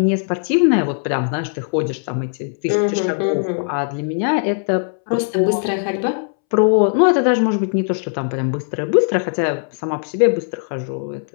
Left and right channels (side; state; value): right; silent; 66 dB below the other